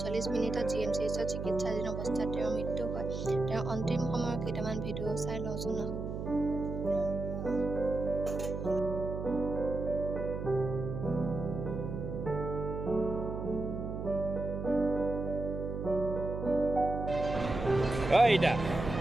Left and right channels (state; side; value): noise; right; hum, 5 dB below the sound